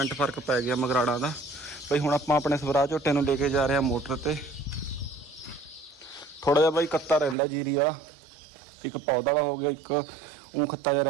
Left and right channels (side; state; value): left; drops out; at 7.4 s